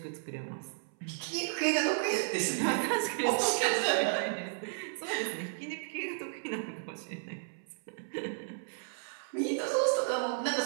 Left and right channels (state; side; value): silent; left; 56 dB below the other